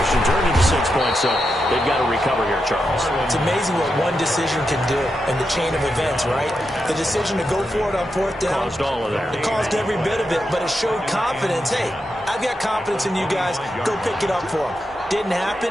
turned into 6 points, so they've got to recover here, Charles. It's amazing what one decision can do in the chain of events, right? The decision to go for it on 4th down. Caused all of that. It caused every bit of it, but it showed confidence. Hey, I've got confidence in you guys. Go pick it up for them. Didn't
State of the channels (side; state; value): both; normal; correlation 0.86